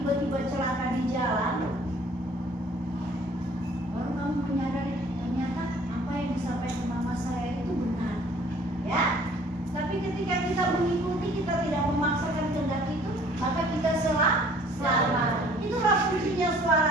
celaka di jalan, baru kamu menyadari ternyata apa yang disampaikan mama saya itu benar, ya. Tapi ketika kita mengikuti, kita tidak memaksakan kehendak itu, maka kita selamat. Itulah fungsinya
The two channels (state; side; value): normal; both; correlation 0.55